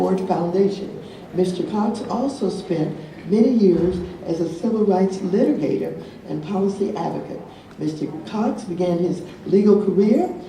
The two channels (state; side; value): identical; both; correlation 1.00